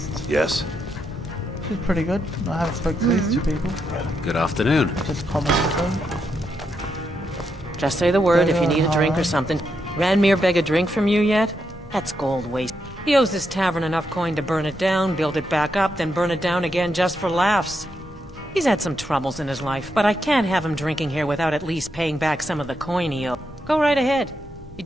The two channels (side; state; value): both; normal; correlation 0.82